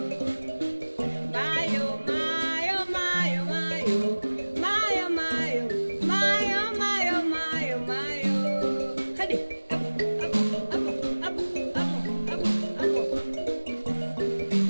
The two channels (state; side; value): inverted; both; correlation -1.00